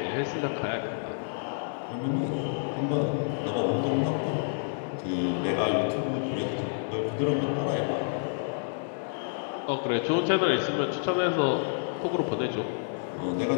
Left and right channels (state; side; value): silent; right; digital silence